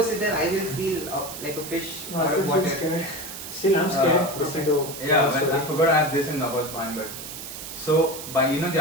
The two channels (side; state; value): right; noise; hiss, 10 dB below the sound